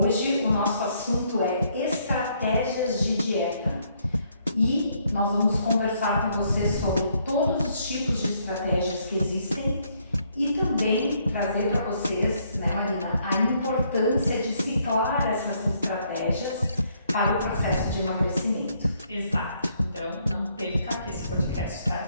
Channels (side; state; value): both; inverted; correlation -0.70